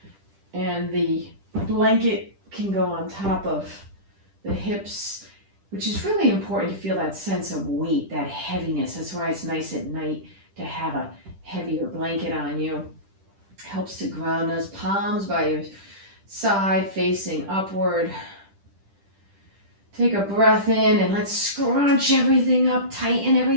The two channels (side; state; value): left; late; 10 ms